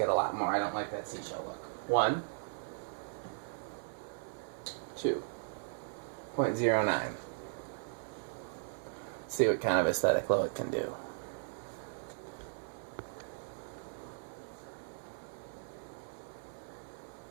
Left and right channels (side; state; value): left; silent; 53 dB below the other